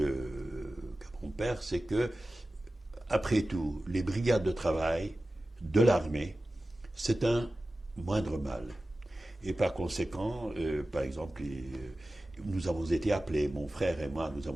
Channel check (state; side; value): normal; both; correlation 0.95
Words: mon père, c'est que, après tout, les brigades de travail de l'armée, c'est un moindre mal. Et par conséquent, par exemple, nous avons été appelés, mon frère et moi, nous